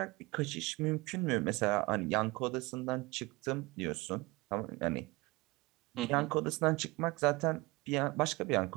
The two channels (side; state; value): left; quieter; 23.3 dB